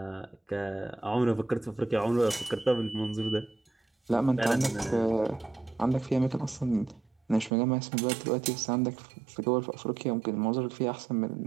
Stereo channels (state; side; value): drops out; left; at 7.5 s